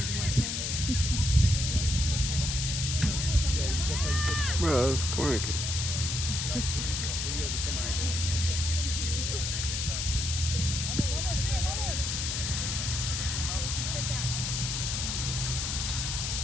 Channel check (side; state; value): left; noise; hiss, 1 dB below the sound